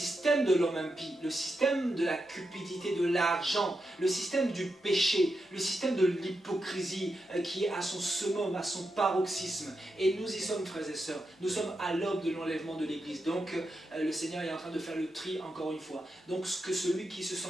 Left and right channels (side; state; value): both; normal; correlation 0.87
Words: de l'homme impie, le système de la cupidité, de l'argent, le système du péché, le système de l'hypocrisie qui est à son summum, à son paroxysme. Et nous y sommes, frères et sœurs. Nous sommes à l'aube de l'enlèvement de l'Église. Donc le Seigneur est en train de faire le tri encore une fois. Donc que celui qui se